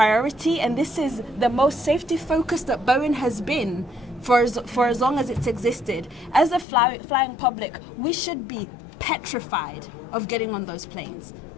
and this is the most safety focused that Boeing has been for as long as it's existed. As a flying public, we should be petrified of getting on those planes.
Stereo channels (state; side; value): drops out; right; at 6.7 s